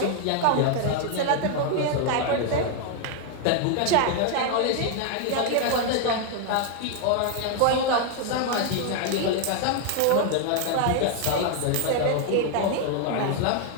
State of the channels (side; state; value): both; different; correlation 0.01